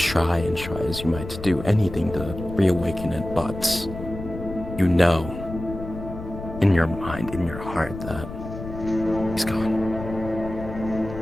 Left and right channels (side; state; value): left; noise; rumble, 10 dB below the sound